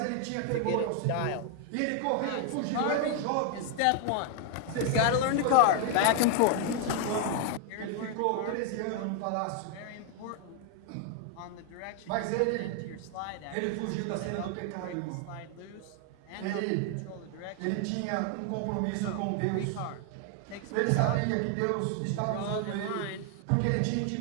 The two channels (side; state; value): both; different; correlation 0.00